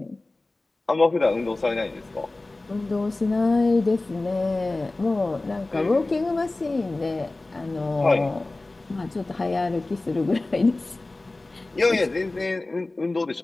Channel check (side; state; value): right; quieter; 3.0 dB